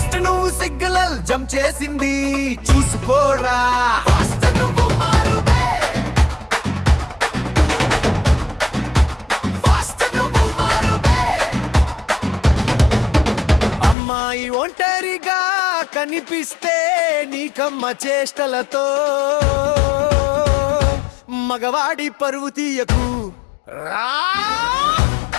నువ్వు సిగ్నల్ జంప్ చేసింది చూసుకోరా. అమ్మాయి ఒంటరిగా కనిపిస్తే నీకమ్మ చేష్టలతో మగవాడి పరువు తీయకు రా.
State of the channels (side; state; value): right; drops out; at 14.0 s